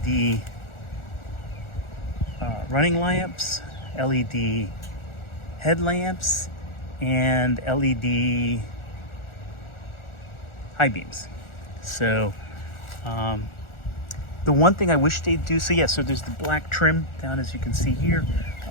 running lamps, LED headlamps, and LED high beams. So the one thing I wish they'd do, so yeah, so there's the black trim down, as you can see here,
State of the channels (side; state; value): right; late; 1.4 ms